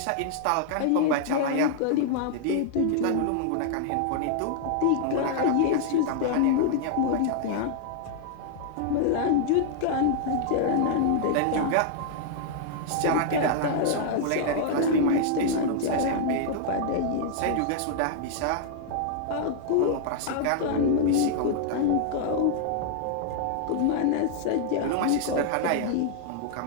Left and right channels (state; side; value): different; both; correlation -0.01